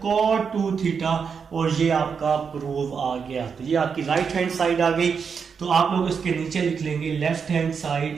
कॉट 2 थीटा, और ये आपका प्रूव आ गया। तो ये आपकी राइट हैंड साइड आ गई, तो आप लोग इसके नीचे लिख लेंगे left hand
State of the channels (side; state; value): left; quieter; 6.2 dB